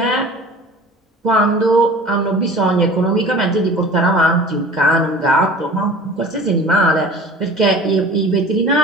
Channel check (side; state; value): both; normal; correlation 0.41